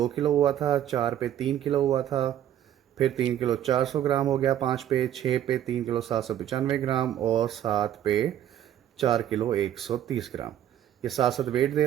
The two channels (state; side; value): quieter; left; 11.2 dB